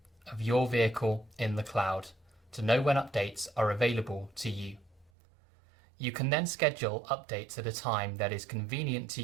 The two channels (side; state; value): left; drops out; at 5.1 s